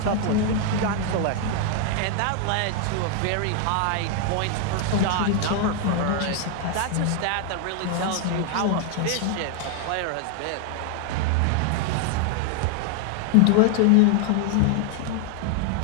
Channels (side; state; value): both; different; correlation 0.00